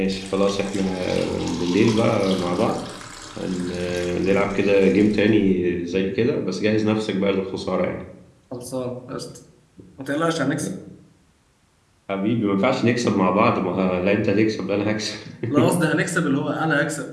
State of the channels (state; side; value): identical; both; correlation 1.00